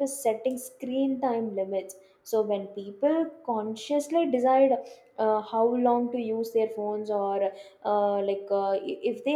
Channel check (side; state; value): both; identical; correlation 1.00